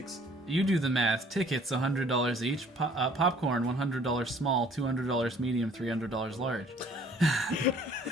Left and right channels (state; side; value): normal; both; correlation 0.56